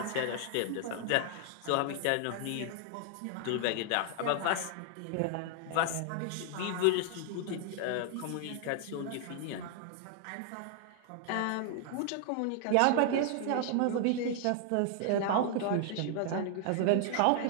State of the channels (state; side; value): different; both; correlation 0.00